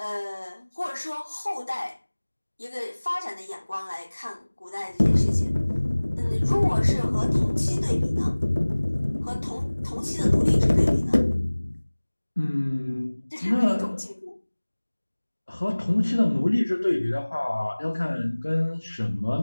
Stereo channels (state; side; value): inverted; both; correlation -1.00